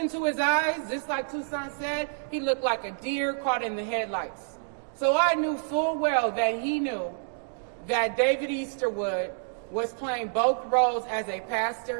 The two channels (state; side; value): silent; left; digital silence